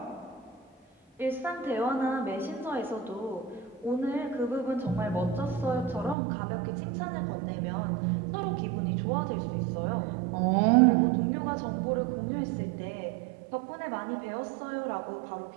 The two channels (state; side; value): drops out; left; at 6.2 s